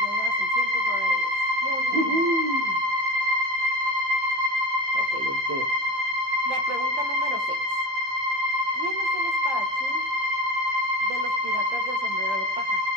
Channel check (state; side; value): late; left; 15 ms